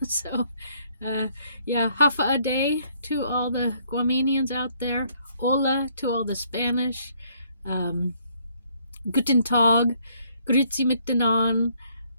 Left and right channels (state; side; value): inverted; both; correlation -0.66